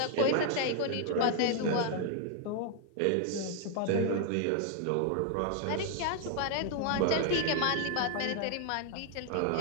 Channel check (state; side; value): different; both; correlation 0.00